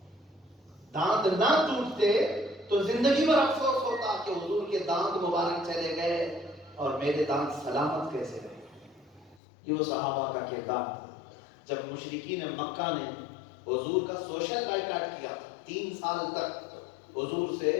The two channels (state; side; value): drops out; right; at 9.4 s